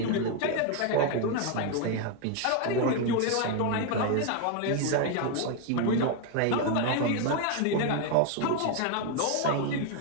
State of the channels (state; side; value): different; both; correlation 0.01